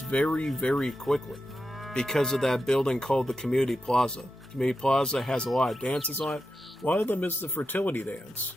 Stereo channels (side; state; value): both; normal; correlation 0.89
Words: very, very quickly because of that building called the Community Plaza. Community Plaza has a lot of dances on it. One of them is the fertility dance.